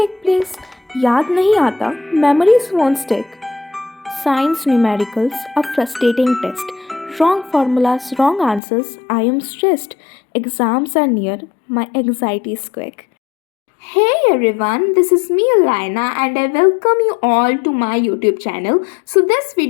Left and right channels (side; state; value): right; drops out; at 8.6 s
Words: place. याद नहीं आता, memories won't stick. Science numericals, a frustrating test. Wrong formulas, wrong answers, I am stressed. Exams are near, my anxiety is quick. Hey everyone, this is me Alina and I welcome you all to my YouTube channel. So this